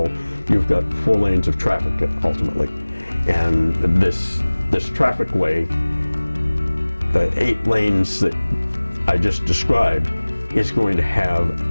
you've got 4 lanes of traffic ultimately. And this traffic way, the 8 lanes that I just described, is going to have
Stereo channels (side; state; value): both; inverted; correlation -1.00